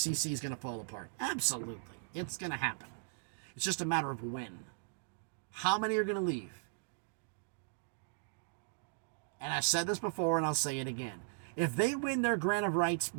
is going to fall apart? Absolutely. It's going to happen. It's just a matter of when. How many are going to leave? And I said this before and I'll say it again. If they win their grant of rights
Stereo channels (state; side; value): silent; left; digital silence